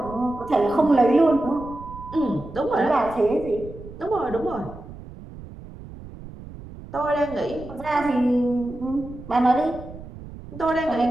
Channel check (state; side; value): noise; right; rumble, 15 dB below the sound